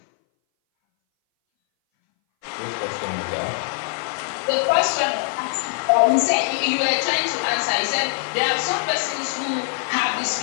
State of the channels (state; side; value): silent; right; 60 dB below the other